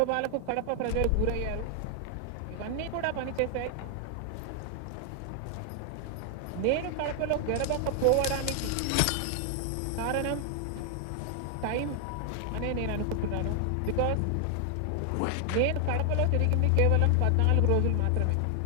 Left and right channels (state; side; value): different; both; correlation 0.00